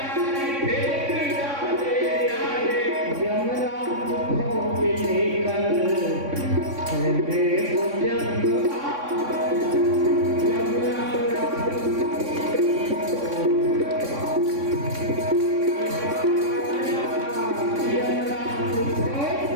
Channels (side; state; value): left; late; 3.6 ms